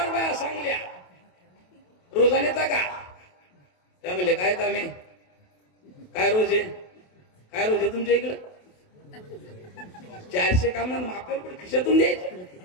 बाया सांगल्या रोजाने का त्या म्हणले काय कामे काय रोज आहे काय रोज आहे तुमच्या इकडं 400 काम ना आपल्याला कुठे खिशातून द्यायचे.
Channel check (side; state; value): right; late; 28 ms